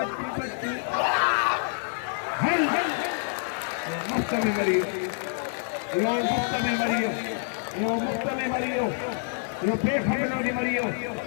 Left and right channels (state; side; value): silent; right; 60 dB below the other